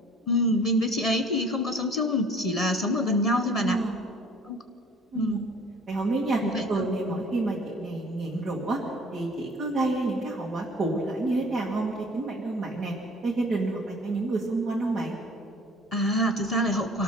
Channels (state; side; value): normal; both; correlation 0.50